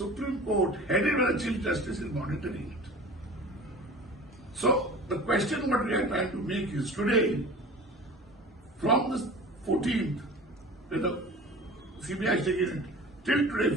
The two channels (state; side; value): normal; both; correlation 0.39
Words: Court, headed by the Chief Justice, is monitoring it. So the question what we are trying to make is today, from the 14th, when the CBI is taking it, till today,